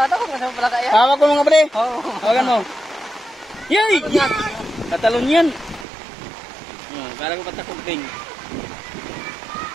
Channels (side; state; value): left; drops out; at 5.9 s